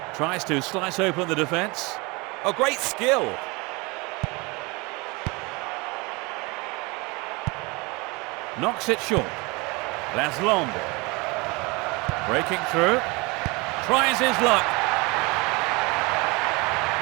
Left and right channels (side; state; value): left; quieter; 26.2 dB